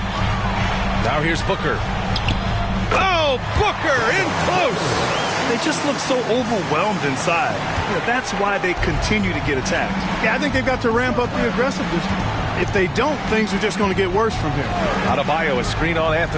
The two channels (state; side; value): identical; both; correlation 1.00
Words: Now here's Booker. Oh, Booker in close. They just look so overwhelmed inside. That's why they continue to get attacked. Yeah, I think they've got to ramp up the aggressiveness. If they don't, things are just going to get worse from here. Adebayo, a screen on